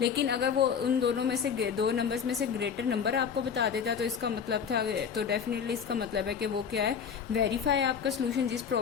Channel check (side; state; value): right; quieter; 6.9 dB